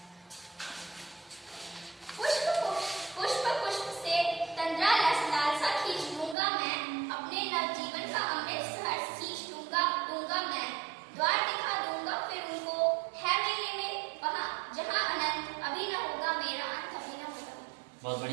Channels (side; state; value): left; drops out; at 6.4 s